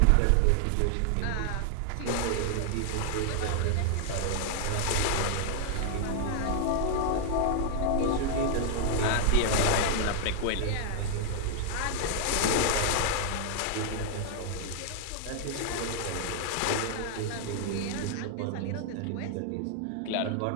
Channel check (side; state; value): both; different; correlation 0.00